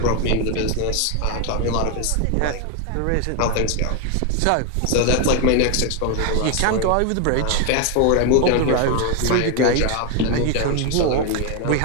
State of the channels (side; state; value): both; different; correlation 0.01